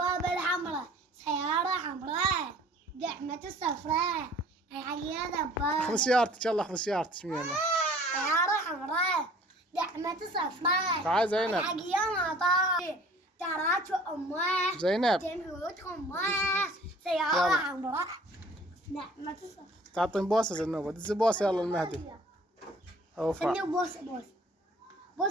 الحمراء سيارة حمراء دعمة صفراء هاي دبابة. خذ سيارتك يلا خذ سيارتك سيارة حمراء دعمة صفراء. تعال زينب. الحق يا مطار تراك امه زينب تموت امه سيارة حمراء دعمة صفراء. تعطين بوسة زنوبة دز بوسة يلا المهدي. اوفا خلني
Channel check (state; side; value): normal; both; correlation 0.51